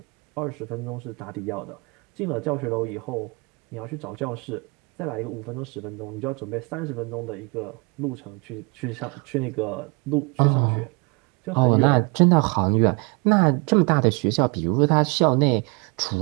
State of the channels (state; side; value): quieter; left; 30.4 dB